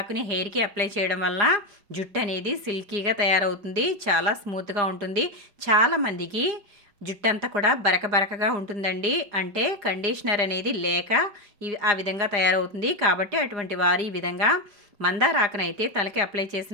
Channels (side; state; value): left; late; 4.9 ms